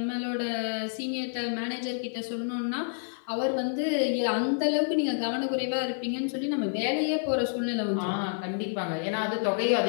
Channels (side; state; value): right; silent; 59 dB below the other